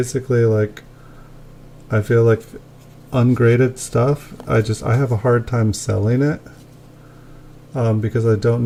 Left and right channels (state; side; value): identical; both; correlation 1.00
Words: like I feel like ungraded stuff, I have a hard time selling it because I don't